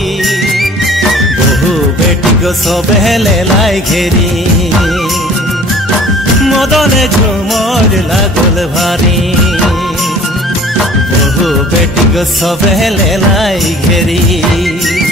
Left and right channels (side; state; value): both; normal; correlation 0.49